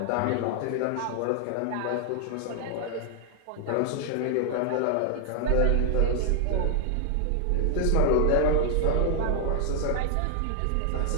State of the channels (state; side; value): different; both; correlation -0.01